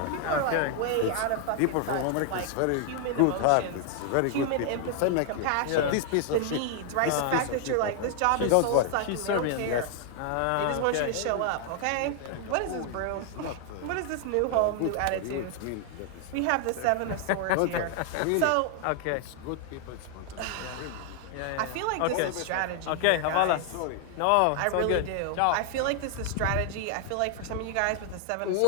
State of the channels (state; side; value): different; both; correlation 0.00